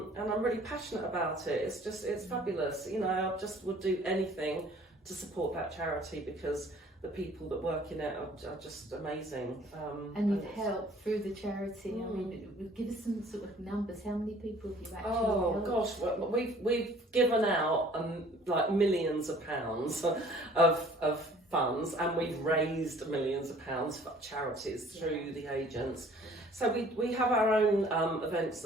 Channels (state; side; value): normal; both; correlation 0.53